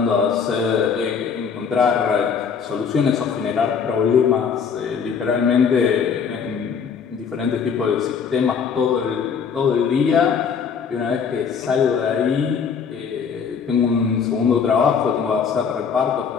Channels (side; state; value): right; quieter; 6.4 dB